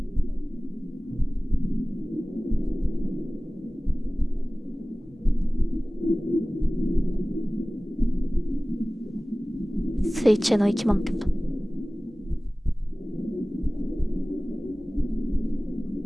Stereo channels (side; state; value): both; normal; correlation 0.98